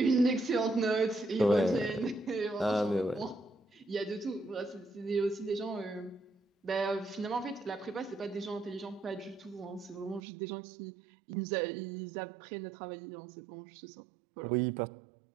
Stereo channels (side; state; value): left; drops out; at 10.2 s